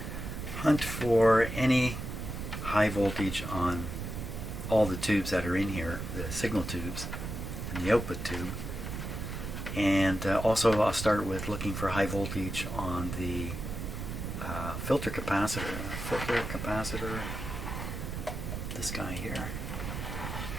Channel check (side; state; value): right; noise; rumble, 6 dB below the sound